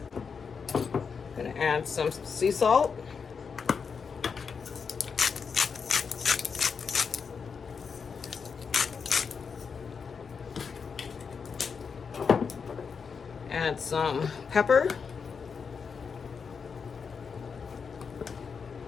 Gonna add some sea salt. Add some pepper,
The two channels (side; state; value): right; quieter; 5.8 dB